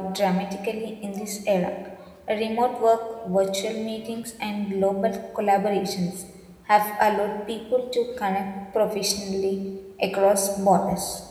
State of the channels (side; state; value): both; identical; correlation 1.00